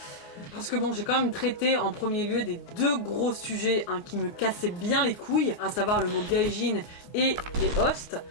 Parce que bon, j'ai quand même traité en premier lieu des 2 gros sujets hein, qui me cassaient bien les couilles, à savoir le mot gaijin et les hosts.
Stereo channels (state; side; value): late; right; 29 ms